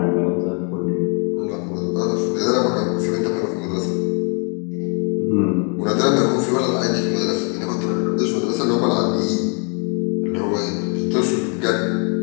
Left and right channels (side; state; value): right; quieter; 36.9 dB